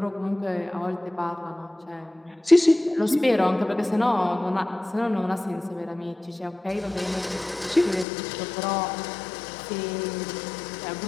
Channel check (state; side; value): drops out; right; at 8.1 s